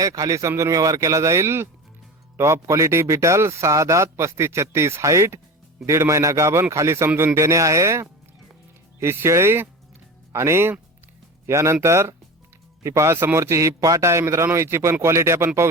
खाली समजून व्यवहार केला जाईल. टॉप क्वालिटी बीटल, 6 दात, 35-36 हाईट, 1.5 महिना गाभण, खाली समजून देणे आहे ही शेळी. आणि यानंतर ही पहा, समोरची ही पाट आहे मित्रांनो. हिची पण क्वालिटी आपण पाहू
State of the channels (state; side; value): normal; both; correlation 0.30